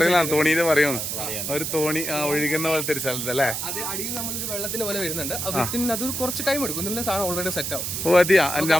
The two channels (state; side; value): noise; right; hiss, 3 dB below the sound